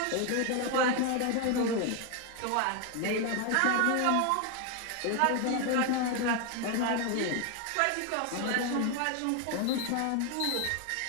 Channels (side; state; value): both; different; correlation 0.01